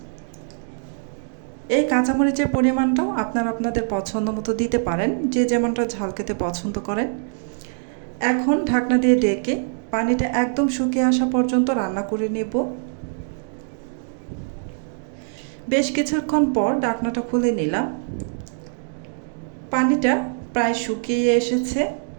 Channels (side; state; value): left; silent; digital silence